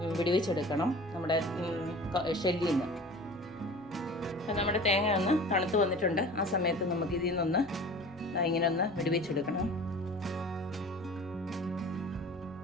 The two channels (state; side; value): normal; both; correlation 0.41